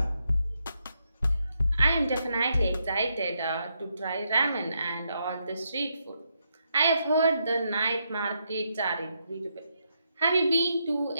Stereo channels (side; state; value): both; inverted; correlation -0.80